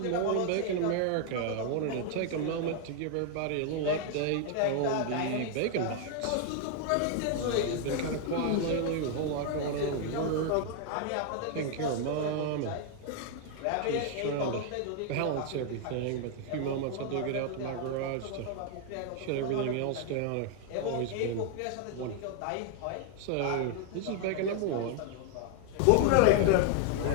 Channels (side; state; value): both; different; correlation 0.00